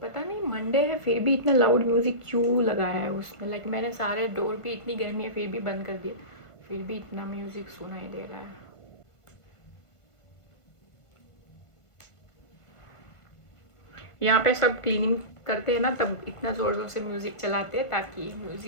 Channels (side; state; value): right; late; 1.5 ms